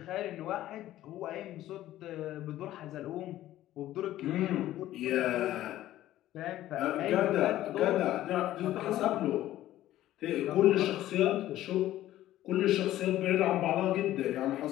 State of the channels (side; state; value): right; quieter; 14.1 dB